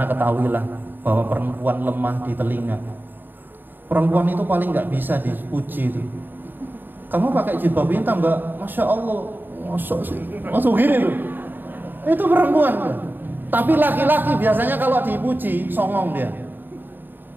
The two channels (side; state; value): left; late; 0.093 ms